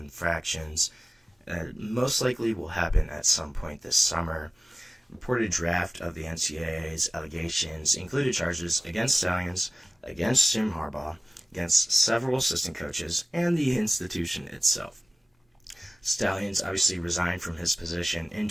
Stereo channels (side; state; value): both; normal; correlation 0.96